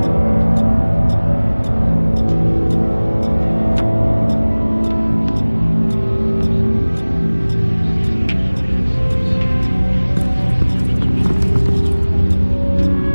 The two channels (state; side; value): inverted; both; correlation -1.00